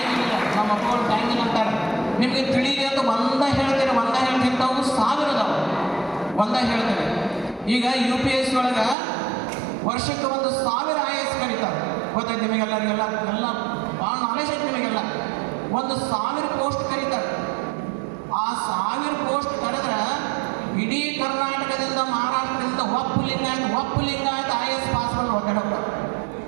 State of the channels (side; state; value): left; drops out; at 9.0 s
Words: ಇಲ್ಲ, ನಮ್ಮ ಮಕ್ಕಳು ಟೈಮ್ ಇಲ್ಲ ಅಂತಾರೆ. ನಿಮಗೆ ತಿಳಿಲಿ ಅಂತ ಒಂದೇ ಹೇಳ್ತೀನಿ ತಾವು 1000 ಅದಾವೆ. ಒಂದೇ ಹೇಳ್ತೇನೆ. ಈಗ UPSC ಒಳಗೆ ವರ್ಷಕ್ಕೆ 1000 IAS ಕರೀತಾರೆ. ಗೊತ್ತೈತೆ ನಿಮಗೆಲ್ಲರಿಗೆಲ್ಲ, ಎಲ್ಲ ಭಾಳ ನಾಲೆಜ್ ಐತೆ ನಿಮಗೆಲ್ಲ. 1000 ಪೋಸ್ಟ್ ಕರೀತಾರೆ. ಆ 1000 ಪೋಸ್ಟ್ ಕರೆದ್ರೆ ಇಡೀ ಕರ್ನಾಟಕದಿಂದ ಮಹಾರಾಷ್ಟ್ರದಿಂದ ಒಪ್ಪು ಲಿಂಗಾಯತ IAS ಪಾಸ್ ಮಾಡಿ ಒದ್ದಾಡಪ್ಪ.